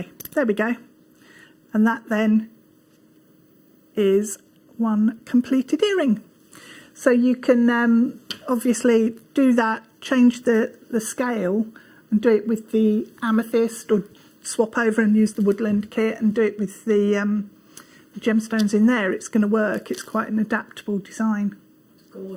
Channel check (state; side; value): identical; both; correlation 1.00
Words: There we go. And that then is one completed earring. So you can obviously do that, change the scale and do it with the amethyst, or swap over and use the woodland kit and do it with the gemstones in there. It's going to work. It's quite an adaptable design.